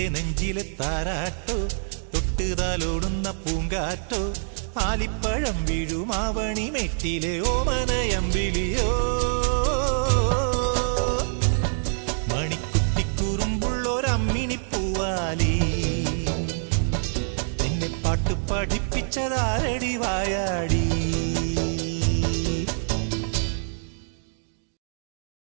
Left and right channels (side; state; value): left; silent; digital silence